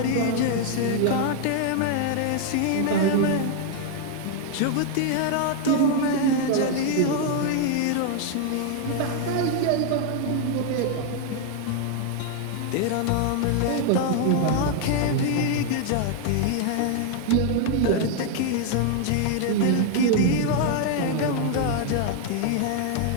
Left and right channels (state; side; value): different; both; correlation 0.00